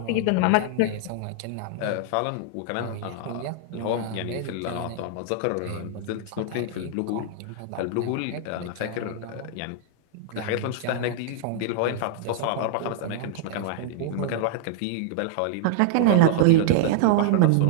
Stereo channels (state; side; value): different; both; correlation -0.01